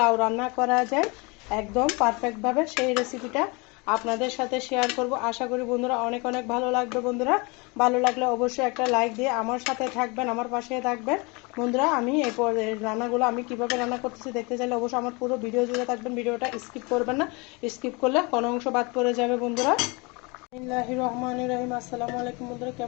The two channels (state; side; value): quieter; right; 28.2 dB